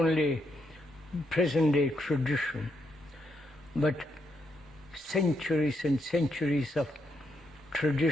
present-day tradition, but centuries and centuries of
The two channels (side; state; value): both; normal; correlation 0.79